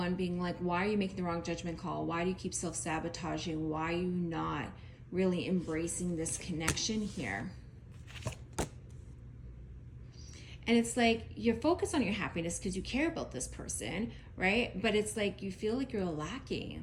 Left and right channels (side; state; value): both; identical; correlation 1.00